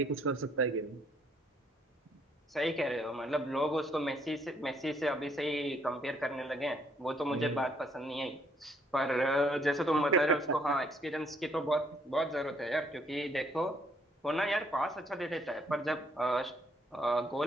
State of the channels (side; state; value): both; normal; correlation 0.67